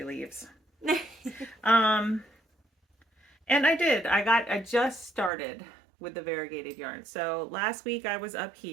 leaves. And I did. I just started with the variegated yarn. So last week I was up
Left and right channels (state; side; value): drops out; left; at 5.3 s